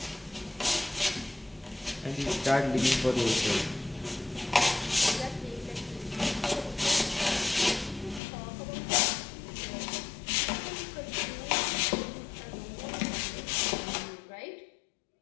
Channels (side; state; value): right; drops out; at 8.2 s